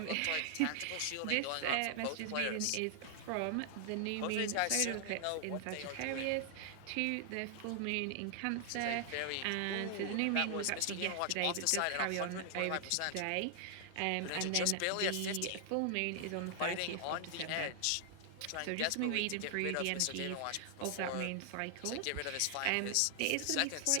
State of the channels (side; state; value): both; different; correlation 0.00